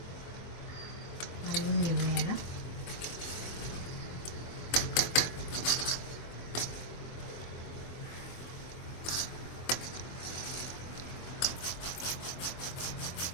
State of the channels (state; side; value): late; right; 24 ms